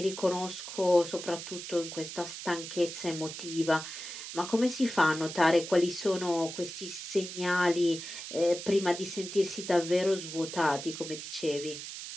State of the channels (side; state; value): right; noise; hiss, 9 dB below the sound